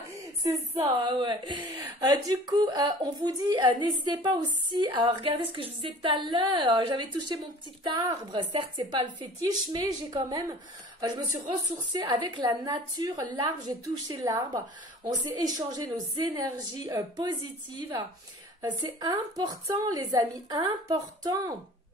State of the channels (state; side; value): normal; both; correlation 0.45